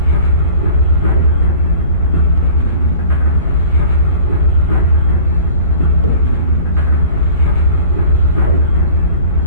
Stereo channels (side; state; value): both; inverted; correlation -0.44